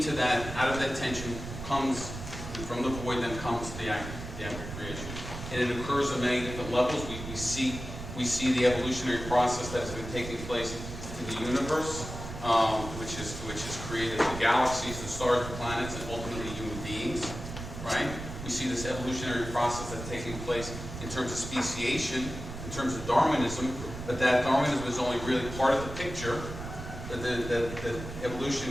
that, out of that tension comes, from the void, then comes the act of creation. And it occurs on many different levels. We see the evolutionary process that has been taking place in the universe, which has created the galaxies, the stars, the planets, and ultimately human beings, right? We see this evolutionary process that's taking place in terms of speciation, in terms of Darwinism, but that Darwinism is only really part of the picture. That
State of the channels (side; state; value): right; noise; rumble, 9 dB below the sound